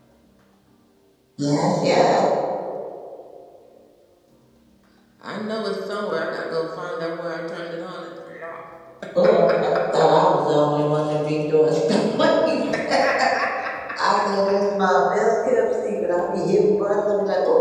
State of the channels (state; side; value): identical; both; correlation 1.00